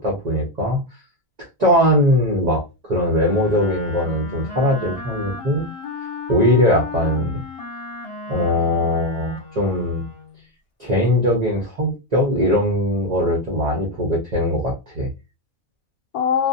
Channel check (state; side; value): normal; both; correlation 0.07